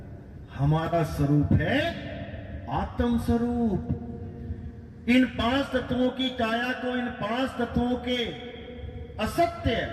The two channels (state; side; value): identical; both; correlation 1.00